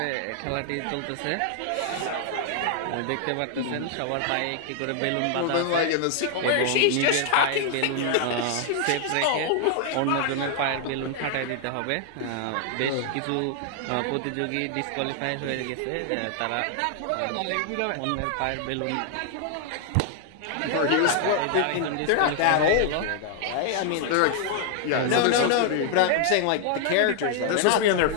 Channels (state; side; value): different; both; correlation 0.00